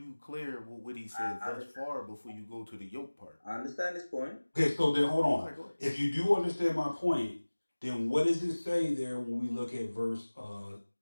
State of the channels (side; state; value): both; inverted; correlation -1.00